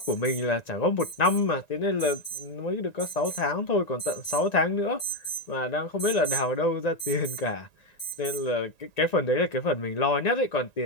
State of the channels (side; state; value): right; late; 1.9 ms